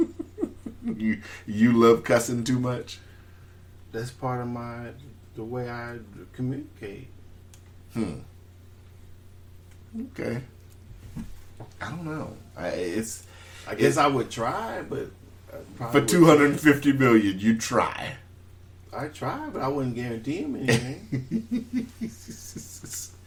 You love cussing too much? That's part of the way I communicate. Okay. I don't know. I guess I would try, but for $250 million, you try. I try, but I wouldn't guarantee him anything.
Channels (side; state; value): both; identical; correlation 1.00